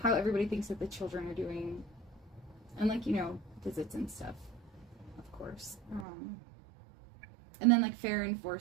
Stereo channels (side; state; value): left; drops out; at 6.1 s